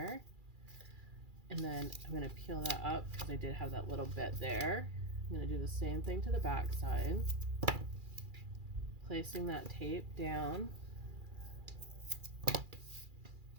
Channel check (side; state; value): left; late; 2.4 ms